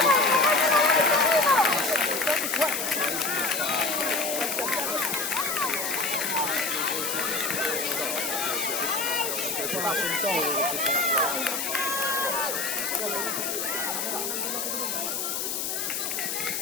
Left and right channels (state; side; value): noise; left; hiss, 2 dB below the sound